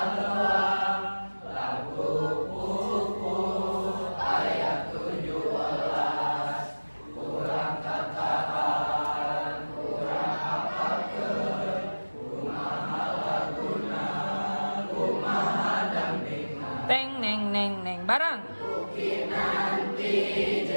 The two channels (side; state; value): both; inverted; correlation -1.00